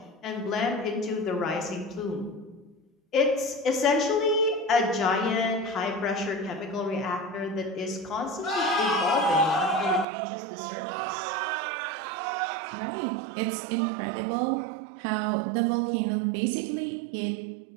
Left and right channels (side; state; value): left; drops out; at 10.1 s